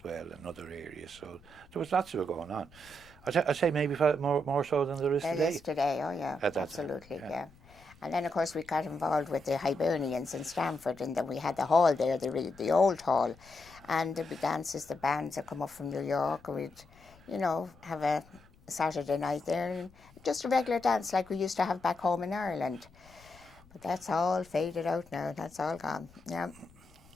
well, and other areas. So there was lots of it going on. I'd say maybe more so than there is There today. is today, oh yeah, At that absolutely, time, yeah. And then, of course, we got involved with the Hibernians in Stamford, and then we had the hall there, the old hall. And there'd be dances, the bands that come up from New York, and we'd, have a Saturday night there, and just a regular dance like we used to have back home in Ireland. But that's all faded out now, that's all gone, yeah.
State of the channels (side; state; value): left; noise; rumble, 25 dB below the sound